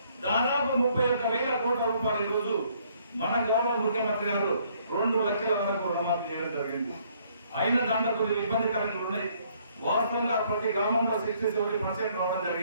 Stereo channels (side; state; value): both; inverted; correlation -0.65